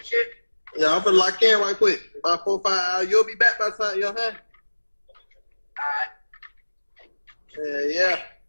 Yeah, I'm finna lock in right quick. About 4 or 5 hours. You'll be back by the time, you know what I'm saying? Alright. Yeah.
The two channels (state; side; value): inverted; both; correlation -1.00